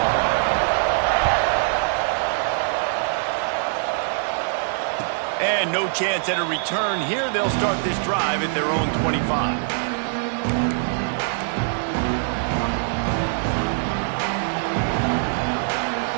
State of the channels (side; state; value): left; silent; digital silence